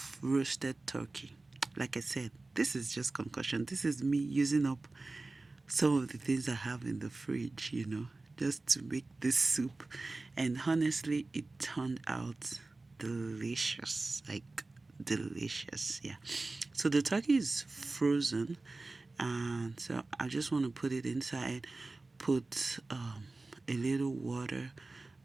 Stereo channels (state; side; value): quieter; left; 3.3 dB